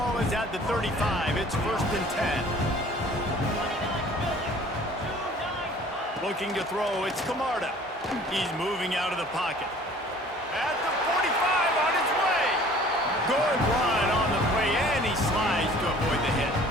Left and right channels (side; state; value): both; normal; correlation 0.50